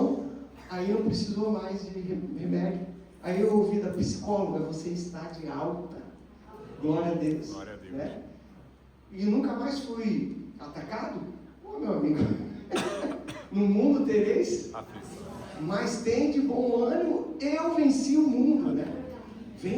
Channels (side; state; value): both; identical; correlation 1.00